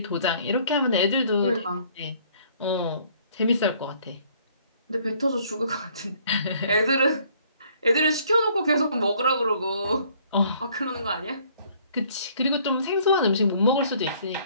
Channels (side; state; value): both; inverted; correlation -0.60